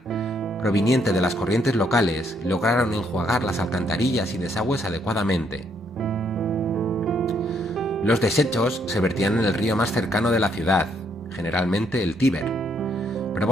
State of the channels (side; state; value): both; normal; correlation 0.71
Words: proveniente de las corrientes locales lograron enjuagar las alcantarillas y desagües adecuadamente. Los desechos se vertían en el río más cercano de la ciudad, generalmente el Tíber.